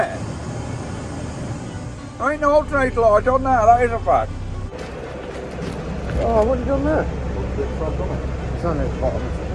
There ain't no alternator light on there, that is a fact. Oh, what have you done there? It's on the bottom.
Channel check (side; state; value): both; identical; correlation 1.00